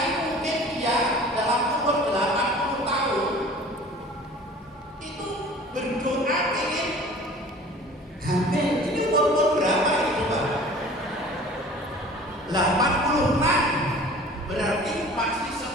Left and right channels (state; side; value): normal; both; correlation 0.45